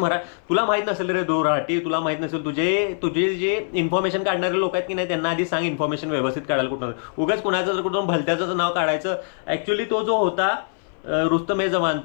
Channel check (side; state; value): right; silent; 59 dB below the other